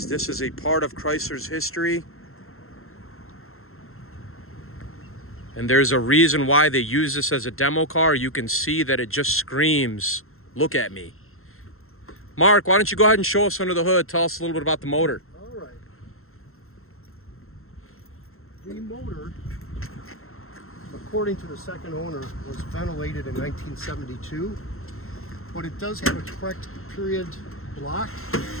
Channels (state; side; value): late; right; 0.62 ms